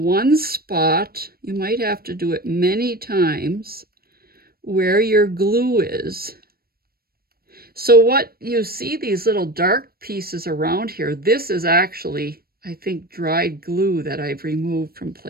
spot. You might have to do it many times where your glue is. So what you see, these little dark pieces around here, this is actually, I think, dried glue that I've removed from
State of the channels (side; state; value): left; late; 0.44 ms